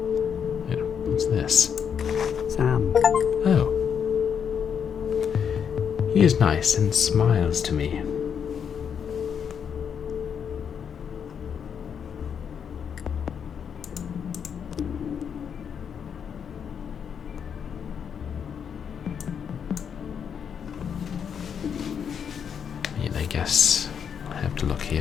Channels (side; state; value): right; quieter; 7.5 dB